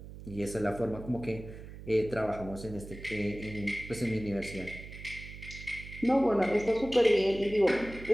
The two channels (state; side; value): noise; right; hum, 13 dB below the sound